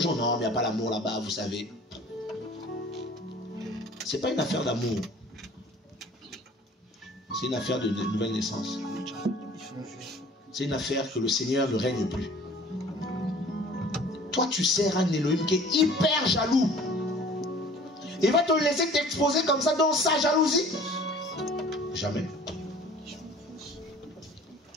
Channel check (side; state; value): both; normal; correlation 0.48